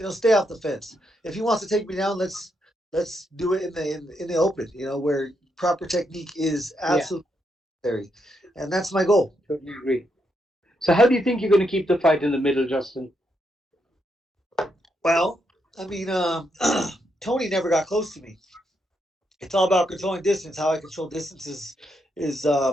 stay off the fence. If he wants to take me down, let's do it in the open. Where proper technique is absolutely necessary, and that's my goal. Totally agree. So, how do you think you're going to keep the fight in the middle, Justin? Well, I mean, Tony never got close to me. It's all about controlling distance. How I control distance is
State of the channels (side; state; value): both; normal; correlation 0.80